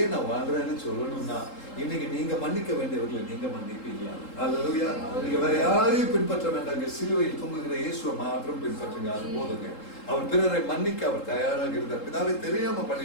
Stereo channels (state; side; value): late; right; 3.8 ms